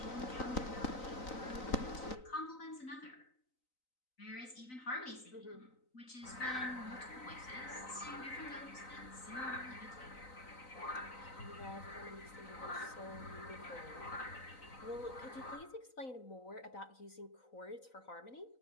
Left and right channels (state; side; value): late; right; 3.9 ms